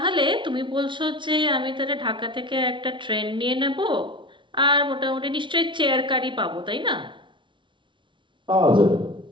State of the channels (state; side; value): late; left; 0.24 ms